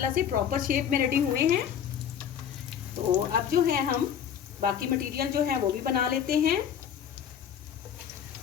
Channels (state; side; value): quieter; right; 8.7 dB